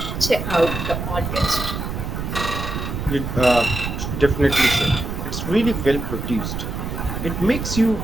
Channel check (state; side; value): noise; right; rumble, 5 dB below the sound